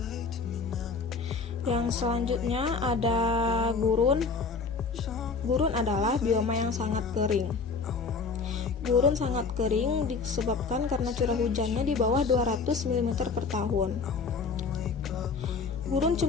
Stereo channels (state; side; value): quieter; right; 4.8 dB